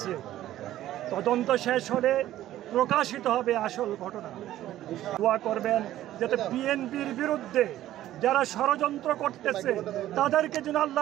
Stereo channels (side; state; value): left; quieter; 13.6 dB